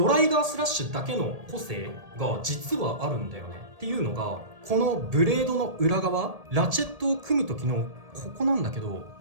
ライガースラッシュだけの個性が実はあるんだよね。っていうのがこのブレードの裏側、ラチェットを組む時のここなんだけど、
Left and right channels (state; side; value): late; left; 1.8 ms